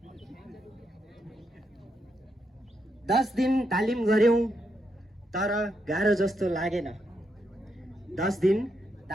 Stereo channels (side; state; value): both; normal; correlation 0.80